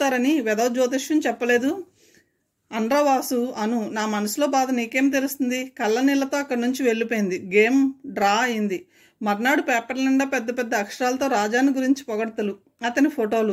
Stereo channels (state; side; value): identical; both; correlation 1.00